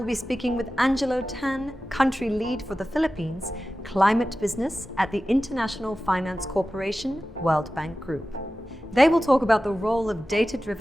be speaking with Angelo Tan, country lead for the Philippines, climate business at the International Finance Corporation World Bank Group. They will talk about the role of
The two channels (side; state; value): both; normal; correlation 0.95